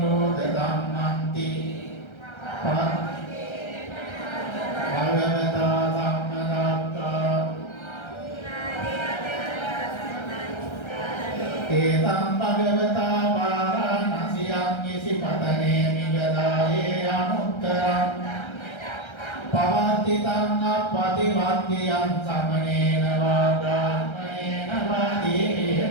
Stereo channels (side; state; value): right; late; 1.3 ms